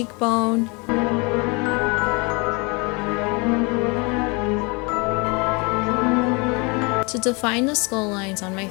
To define the skull lines on my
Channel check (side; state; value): right; quieter; 29.6 dB